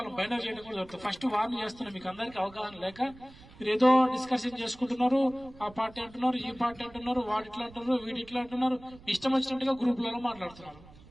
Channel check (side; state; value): right; noise; rumble, 21 dB below the sound